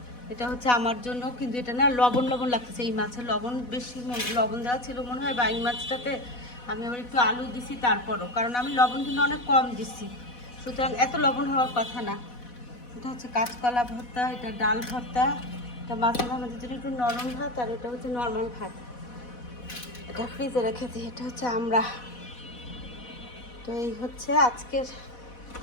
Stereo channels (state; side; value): late; right; 4.1 ms